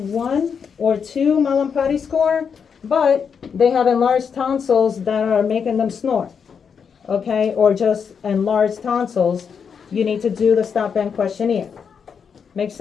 or 2 Mallampati score, but they have enlarged tonsils that are making them snore, okay? Or just enlarged tonsils, you need to do the stop band questionnaire. Make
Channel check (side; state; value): right; quieter; 6.6 dB